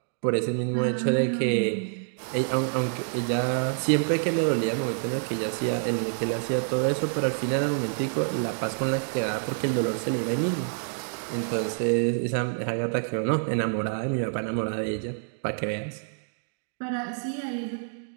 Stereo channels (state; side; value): silent; left; digital silence